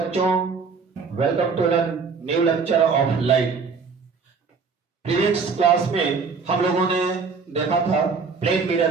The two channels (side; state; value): left; quieter; 5.1 dB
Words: welcome to the new lecture of light. Previous class में हम लोगों ने देखा था प्लेन